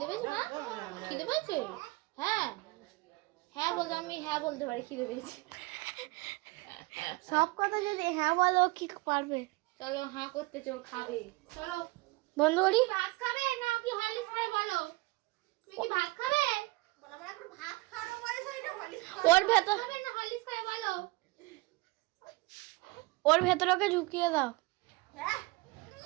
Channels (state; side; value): quieter; left; 23.6 dB